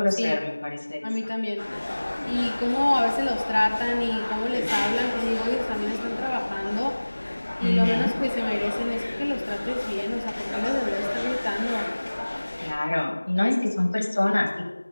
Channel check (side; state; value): both; inverted; correlation -1.00